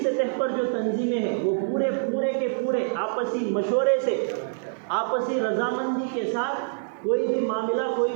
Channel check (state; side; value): silent; left; 58 dB below the other